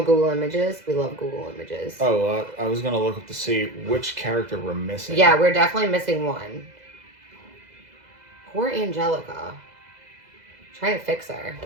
Google Images. We love Google Images. Oh, I was going to look up to see which character we're missing. Yeah, we're definitely missing one. Poor Angelica. Trying to fix her.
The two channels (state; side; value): late; left; 2.0 ms